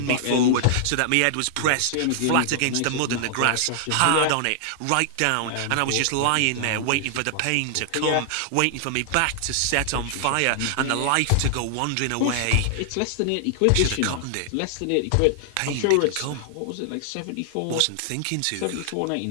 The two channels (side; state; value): both; different; correlation -0.01